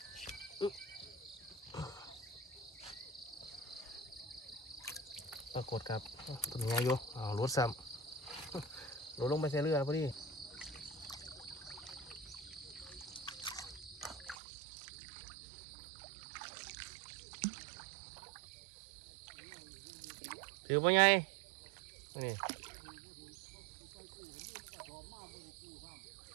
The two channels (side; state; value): left; drops out; at 14.4 s